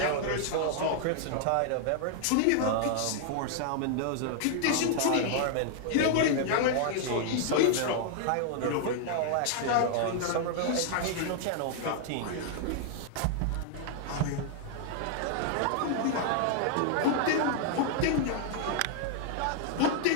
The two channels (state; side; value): different; both; correlation -0.01